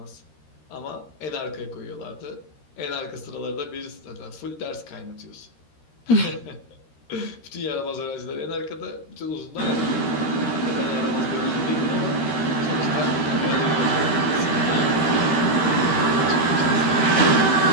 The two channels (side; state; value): right; late; 13 ms